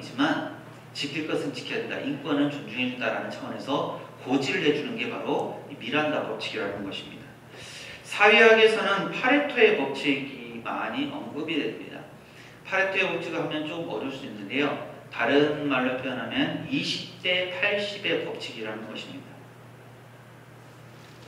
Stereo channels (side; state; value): both; identical; correlation 1.00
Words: 지킬 것은 지켜야 된다. 인권은 존중해 준다라는 차원에서 고지를 해주는 게 바로 미란다 법칙이라는 것입니다. 사회학에서는 파레토의 법칙이 많이 언급이 됩니다. 파레토의 법칙을 하면 좀 어려울 수 있는데요. 다른 말로 표현하면 20대 80의 법칙이라는 것입니다.